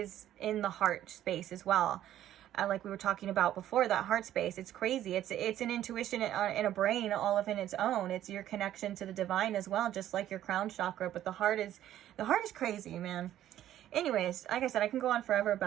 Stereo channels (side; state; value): left; quieter; 12.2 dB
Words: in the heart space as well. Like we were talking about before, that heart space, it's crazy. It's an intuition in a brain all of in its own. It's your connection to the divine as well, just like your crown chakra. But the heart is crazy, man. Anyways, like I said, I can go on forever